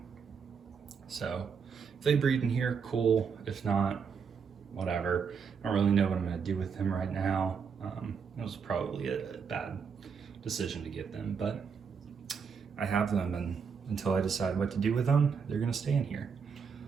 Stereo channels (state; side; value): quieter; left; 6.2 dB